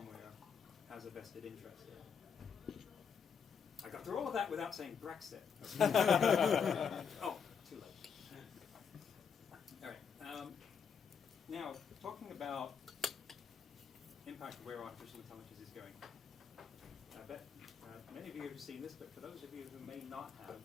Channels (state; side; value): quieter; right; 6.7 dB